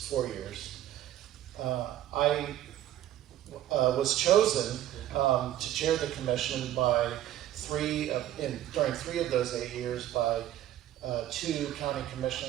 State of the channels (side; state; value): left; quieter; 12.7 dB